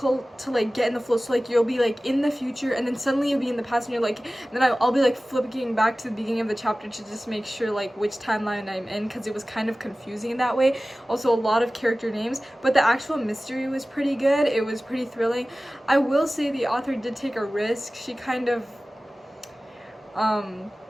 to like get in the flow. So like you'll be like in the future and then suddenly you'll be in the past, and you're like, and then I'll be like flipping back to the beginning of the chapter to just make sure like which timeline I'm in, because it was kind of confusing in that way. Also a lot of character names, but the actual mystery was pretty good. It was pretty thrilling. I will say the author did take a risk. She kind of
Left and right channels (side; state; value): both; normal; correlation 0.97